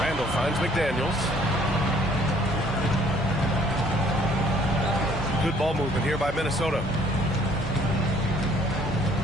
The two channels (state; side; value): normal; both; correlation 0.60